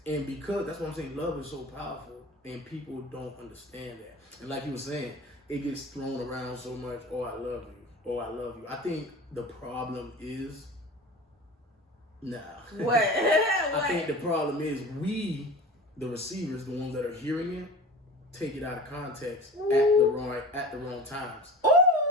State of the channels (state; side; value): normal; both; correlation 0.35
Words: And because that's what I'm saying, love is so powerful and people don't understand that. And like you were saying, it gets thrown around so much, I love you. I love you. I think the problem is What? I think the problem is we, the receivers, the ones that are hearing it, take it out of context at the wrong times. Ooh.